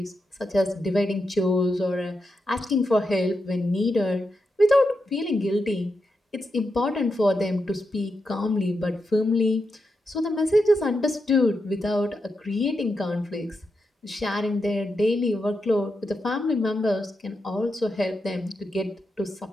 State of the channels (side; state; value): both; normal; correlation 0.86